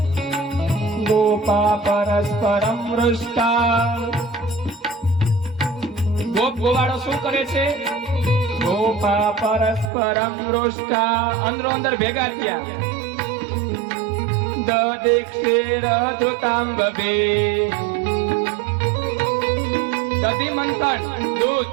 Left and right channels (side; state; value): left; drops out; at 9.9 s